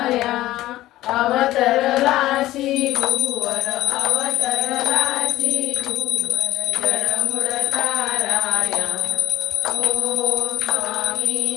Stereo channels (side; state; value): right; quieter; 15.6 dB